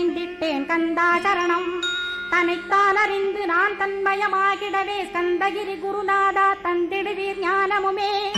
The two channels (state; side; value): identical; both; correlation 1.00